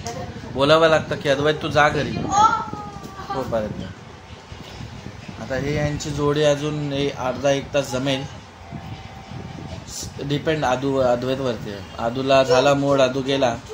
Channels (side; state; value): both; identical; correlation 1.00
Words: बोलावं लागतं की अद्वैत तू जा घरी. हो पर्यंत. आता हे यांची जोडी अजून अर्धा-1 तास जमेल. डिपेंड अद्वैतवरती आहे. आदूला झाला मूड, आदू गेला